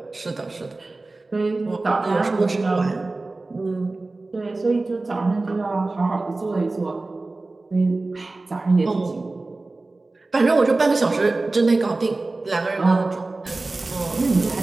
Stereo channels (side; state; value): left; quieter; 3.3 dB